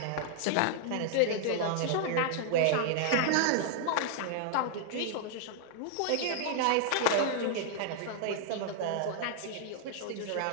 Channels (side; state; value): both; different; correlation -0.01